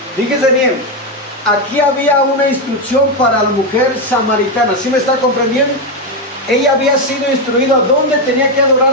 Fíjese bien, aquí había una instrucción para la mujer samaritana. ¿Sí me está comprendiendo? Ella había sido instruida dónde tenía que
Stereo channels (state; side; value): normal; both; correlation 0.07